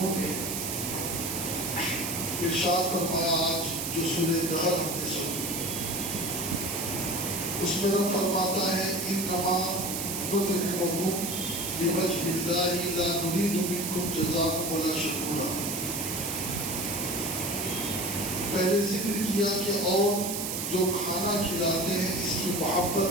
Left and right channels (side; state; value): right; noise; hiss, 3 dB below the sound